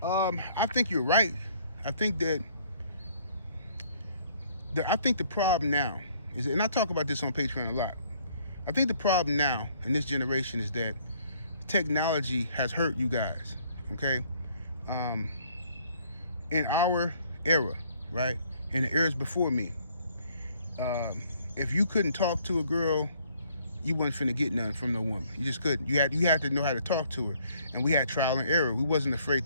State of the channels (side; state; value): both; inverted; correlation -0.63